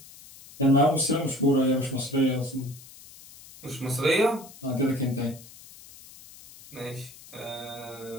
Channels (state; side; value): noise; left; hiss, 19 dB below the sound